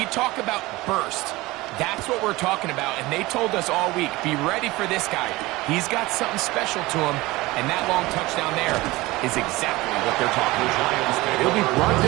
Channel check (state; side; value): quieter; left; 20.2 dB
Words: talk about burst, that's what we're talking about. And they told us all week, be ready for this guy. He's got something special to him. And that long touchdown there is exactly what they're talking about. He'll be brought